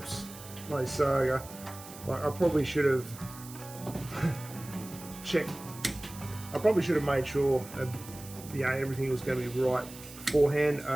my saga, like I probably should have checked. I probably should have made sure everything was going to be right beforehand.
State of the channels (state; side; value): noise; right; hiss, 16 dB below the sound